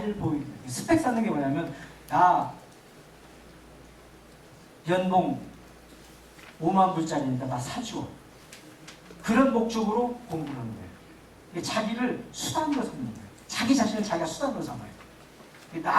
보이게. 스펙 쌓는 게 뭐냐면 나 연봉 5만 불짜리니까 나 사줘. 그런 목적으로 공부를 하는 거예요. 자기를 수단으로 삼는 거예요. 자기 자신을 자기가 수단으로 삼아요.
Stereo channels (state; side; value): identical; both; correlation 1.00